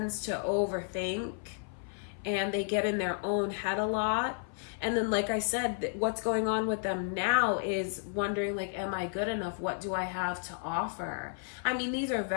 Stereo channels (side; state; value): right; silent; 56 dB below the other